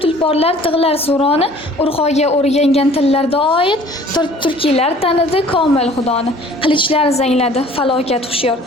tulporlar tig'lar suroni, urg'oga o'rgangan tillarda oid. Turkiylar tanidi komil xudoni. Qilichlar zangladi, falokat hushyor.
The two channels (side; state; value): both; normal; correlation 0.51